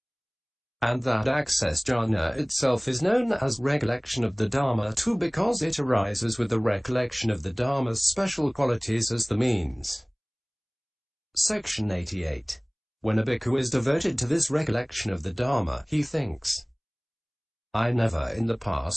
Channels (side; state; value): both; identical; correlation 1.00